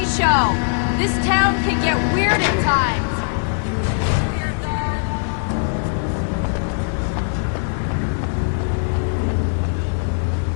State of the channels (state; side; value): silent; right; 63 dB below the other